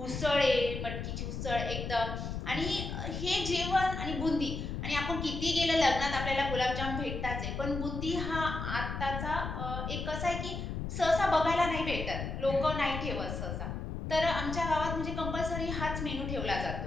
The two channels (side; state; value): left; noise; rumble, 5 dB below the sound